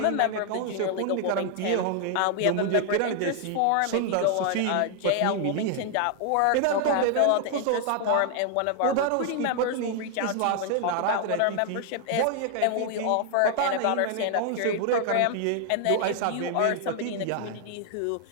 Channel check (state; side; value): different; both; correlation 0.00